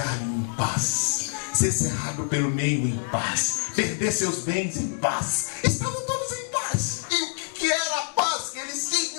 em paz, ser cerrado pelo meio em paz, perder seus bens em paz. Estavam todos em paz. E o que era a paz que eles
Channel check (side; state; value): right; silent; digital silence